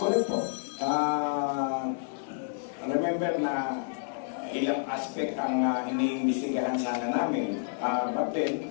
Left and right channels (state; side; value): silent; right; 58 dB below the other